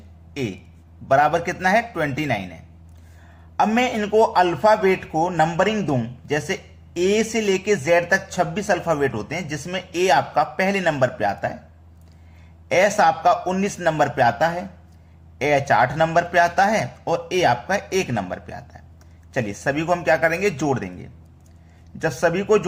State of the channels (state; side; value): identical; both; correlation 1.00